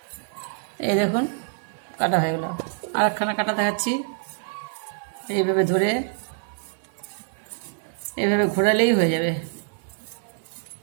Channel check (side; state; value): left; silent; digital silence